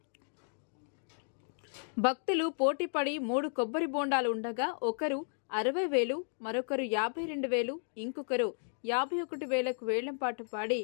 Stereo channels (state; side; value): silent; right; digital silence